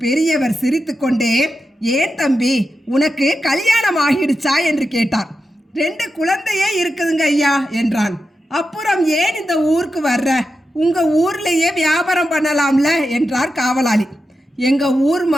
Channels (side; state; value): both; normal; correlation 0.89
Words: பெரியவர் சிரித்துக்கொண்டே, ஏன் தம்பி, உனக்கு கல்யாணம் ஆகிடுச்சா என்று கேட்டார். 2 குழந்தையே இருக்குதுங்க ஐயா என்றான். அப்புறம் ஏன் இந்த ஊருக்கு வர்ற? உங்க ஊர்லேயே வியாபாரம் பண்ணலாம்ல என்றார் காவலாளி. எங்க ஊர்